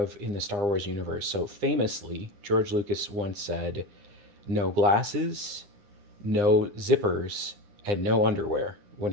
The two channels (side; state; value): left; late; 9.8 ms